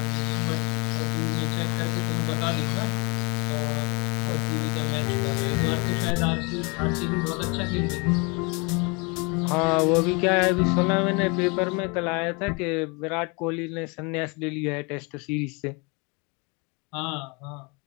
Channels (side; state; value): right; quieter; 30.3 dB